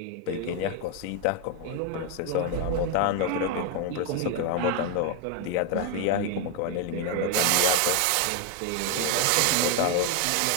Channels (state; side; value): different; both; correlation 0.01